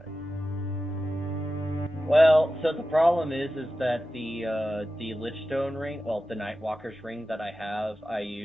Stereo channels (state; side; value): noise; right; hum, 29 dB below the sound